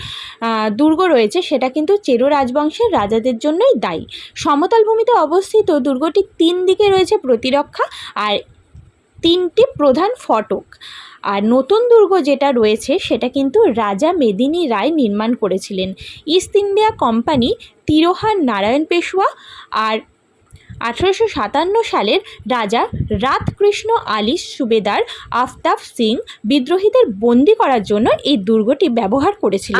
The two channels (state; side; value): identical; both; correlation 1.00